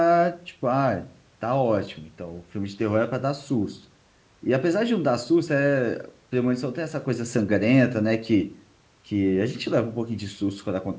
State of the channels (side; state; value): both; identical; correlation 1.00